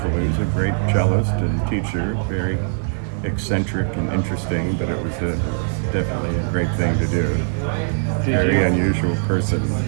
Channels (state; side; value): silent; left; 61 dB below the other